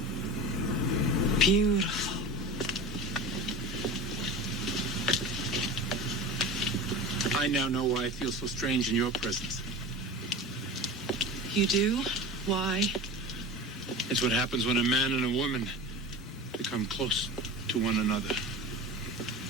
Beautiful. I now know why I feel so strange in your presence. You do? Why? It's what happens when a man and a woman become close to one another.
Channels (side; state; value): both; normal; correlation 0.32